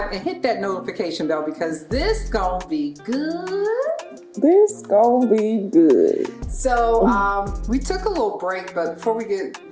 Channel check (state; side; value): identical; both; correlation 1.00